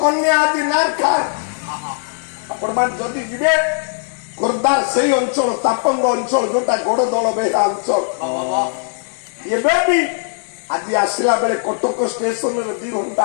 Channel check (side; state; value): right; silent; 67 dB below the other